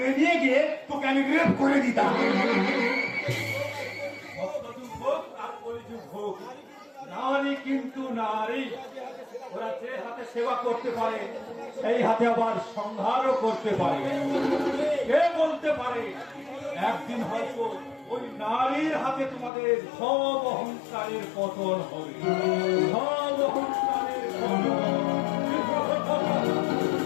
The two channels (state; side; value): drops out; right; at 19.5 s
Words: নিয়ে গিয়ে তোকে আমি রেপ করে দিতাম। ভক্তযুগ হোক আর কলিযুগ হোক, নারী কিন্তু নারী। ওরা যে হাতে সেবা করতে পারে, সেই হাতে আবার সংহারও করতে পারে। কে বলতে পারে একদিন হয়তো ওই নারীর হাতে তোমাদের সব অহংকারের পতন হবে, সব অহংকারের